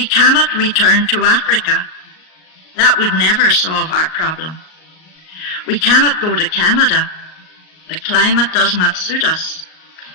cannot return to Africa. That would never solve our problem. We cannot go to Canada. The climate does not suit us.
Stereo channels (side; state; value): right; late; 38 ms